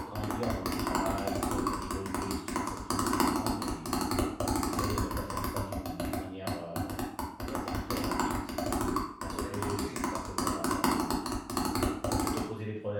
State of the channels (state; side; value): identical; both; correlation 1.00